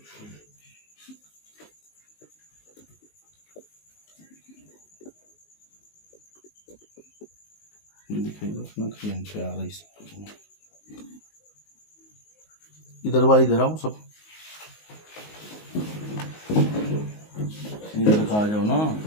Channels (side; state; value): right; late; 19 ms